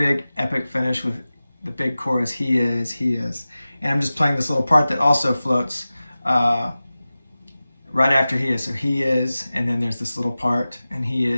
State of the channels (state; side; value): inverted; both; correlation -0.96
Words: epic finish with the big chorus, he is, and I'm just playing this little part that also floats right after he is. So he is, and then there's this little part, and he